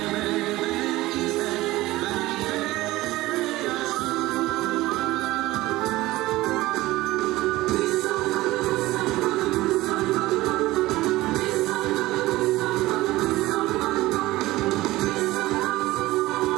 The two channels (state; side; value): quieter; left; 18.1 dB